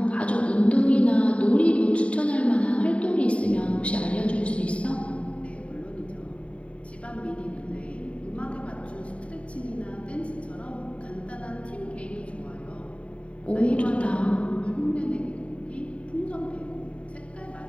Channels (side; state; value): right; late; 0.063 ms